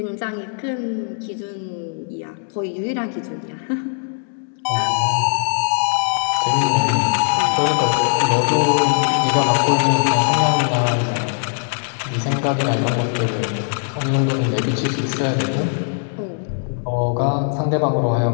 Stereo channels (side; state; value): right; silent; digital silence